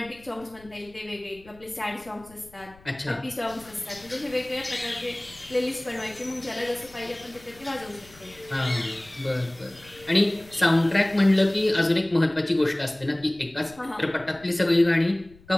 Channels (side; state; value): left; noise; rumble, 25 dB below the sound